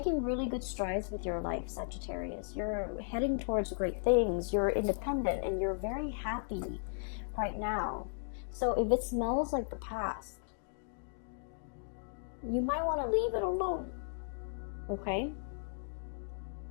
really good strides with your life, Sagittarius. You're heading towards great things. You're independent and you're very happy right now. So if it smells like the past, you might want to leave it alone. Okay?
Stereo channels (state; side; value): silent; right; digital silence